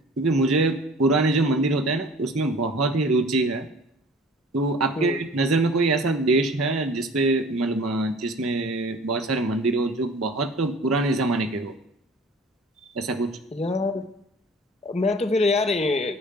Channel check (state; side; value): normal; both; correlation 0.46